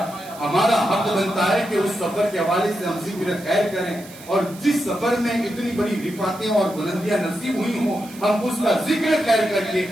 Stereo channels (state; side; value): noise; right; hiss, 19 dB below the sound